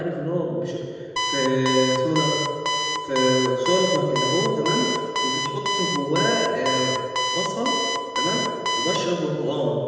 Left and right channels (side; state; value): both; identical; correlation 1.00